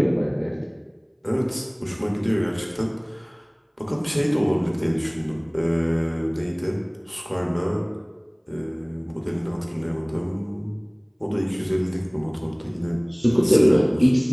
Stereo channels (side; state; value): both; identical; correlation 1.00